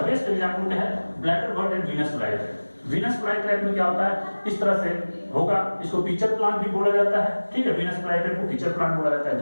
बेस्ट एग्जांपल क्या है, bladder bird and Venus flytrap. Venus flytrap में क्या होता है, इस तरह से होगा, इसको पिचर प्लांट भी बोला जाता है। ठीक है, वीनस फ्लाईट्रैप को पिचर प्लांट बोला जाता है,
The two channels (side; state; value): both; inverted; correlation -1.00